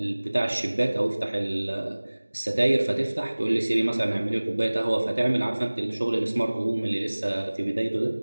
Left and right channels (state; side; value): inverted; both; correlation -1.00